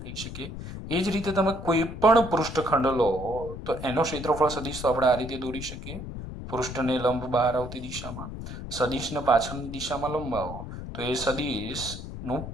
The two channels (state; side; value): noise; left; rumble, 9 dB below the sound